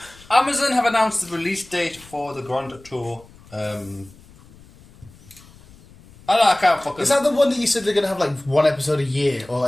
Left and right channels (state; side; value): noise; left; rumble, 24 dB below the sound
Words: Amazon have announced the release date for the Grand Tour. I can't fucking. Is that the one that you said they're gonna have like one episode a year, or